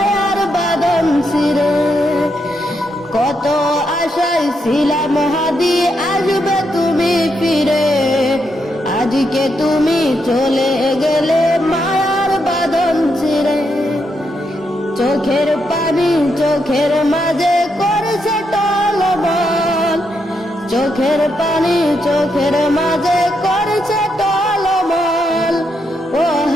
বাঁধন ছিঁড়ে। কত আশায় ছিলাম হাদি আসবে তুমি ফিরে, আজকে তুমি চলে গেলে মায়ার বাঁধন ছিঁড়ে। চোখের পানি চোখের মাঝে করেছে টলমল। চোখের পানি চোখের মাঝে করেছে টলমল। ও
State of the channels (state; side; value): normal; both; correlation 0.80